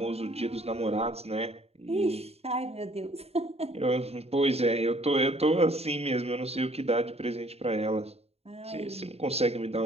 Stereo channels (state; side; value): late; left; 0.30 ms